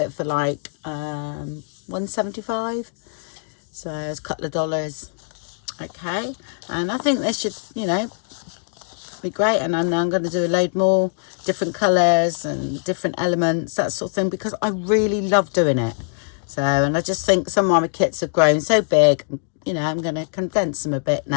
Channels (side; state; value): right; silent; digital silence